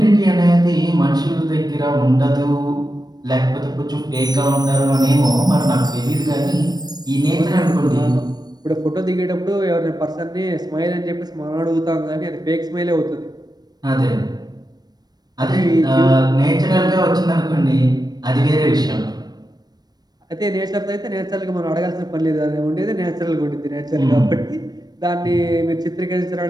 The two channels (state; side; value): late; left; 0.19 ms